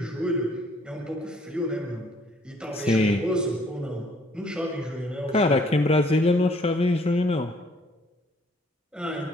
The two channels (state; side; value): normal; both; correlation 0.62